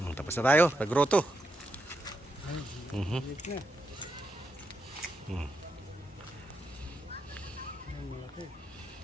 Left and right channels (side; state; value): both; normal; correlation 0.83